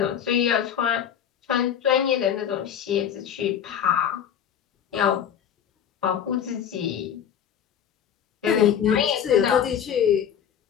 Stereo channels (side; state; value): right; quieter; 8.9 dB